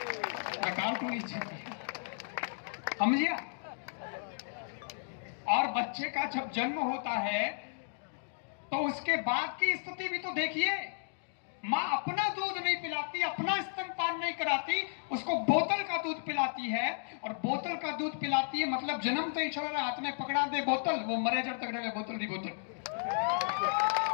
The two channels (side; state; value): right; silent; digital silence